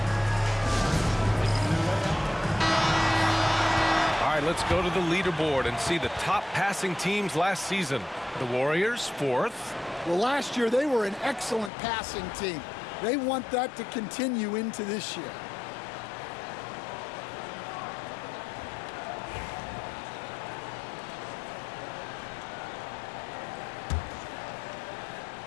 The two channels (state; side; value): drops out; right; at 11.7 s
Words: Let's go to the leaderboard and see the top passing teams last season. The Warriors, 4th. Well, last year they were an excellent passing team. They want that to continue into this year.